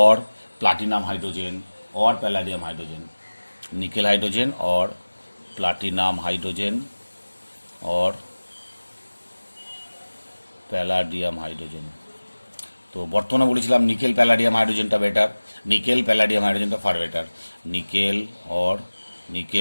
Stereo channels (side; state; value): both; inverted; correlation -1.00